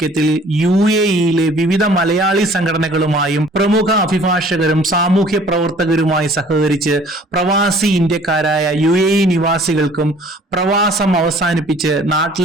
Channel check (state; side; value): normal; both; correlation 0.53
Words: UAE-യിലെ വിവിധ മലയാളി സംഘടനകളുമായും പ്രമുഖ അഭിഭാഷകരും സാമൂഹ്യ പ്രവർത്തകരുമായി സഹകരിച്ച് പ്രവാസി ഇന്ത്യക്കാരായ UAE നിവാസികൾക്കും പ്രവാസം അവസാനിപ്പിച്ച്